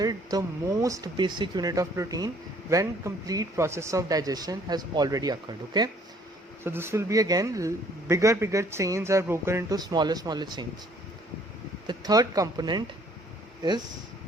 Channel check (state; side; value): normal; both; correlation 0.60